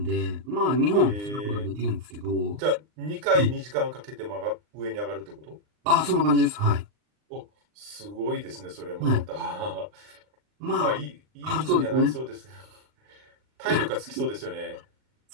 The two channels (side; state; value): left; late; 39 ms